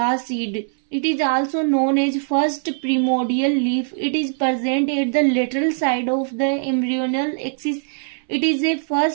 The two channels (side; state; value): left; silent; 65 dB below the other